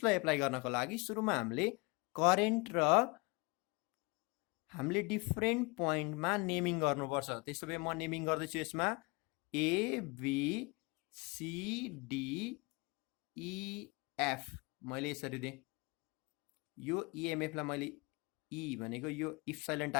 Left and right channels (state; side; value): quieter; right; 27.3 dB